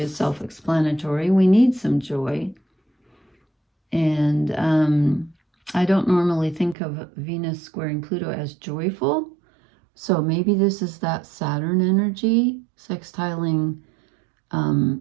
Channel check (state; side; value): drops out; left; at 6.8 s